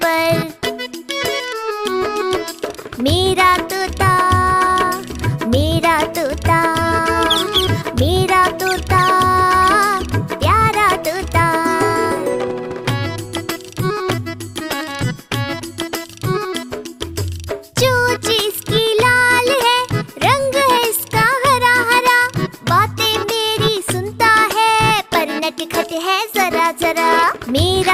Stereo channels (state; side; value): identical; both; correlation 1.00